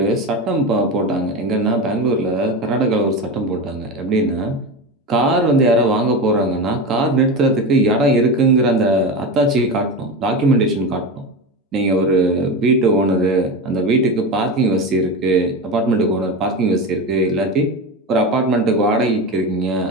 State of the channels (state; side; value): normal; both; correlation 0.22